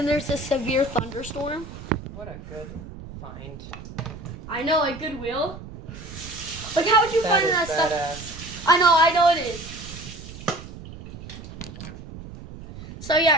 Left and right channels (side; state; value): right; noise; rumble, 13 dB below the sound